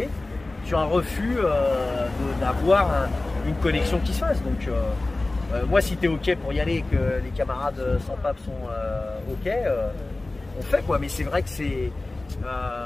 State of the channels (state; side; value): quieter; right; 3.0 dB